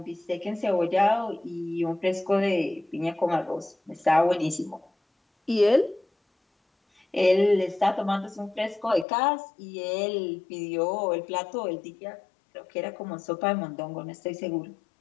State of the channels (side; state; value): right; drops out; at 9.1 s